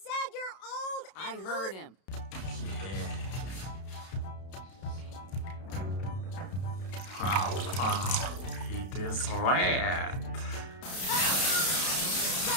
you're old I and heard him. Wow, it is red.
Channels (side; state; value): right; late; 32 ms